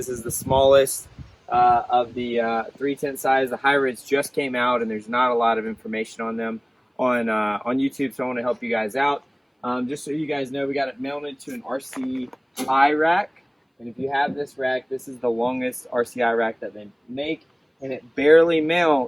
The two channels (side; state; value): both; identical; correlation 1.00